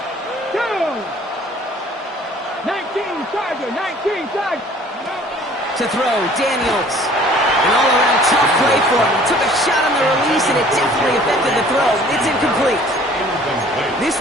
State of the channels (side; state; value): both; normal; correlation 0.53